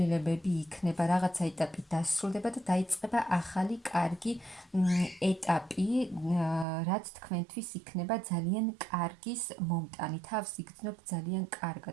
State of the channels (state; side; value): drops out; left; at 6.7 s